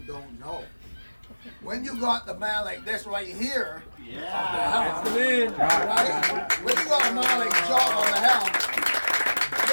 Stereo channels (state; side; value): inverted; both; correlation -1.00